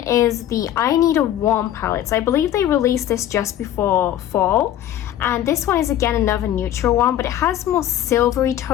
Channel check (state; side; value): quieter; right; 11.9 dB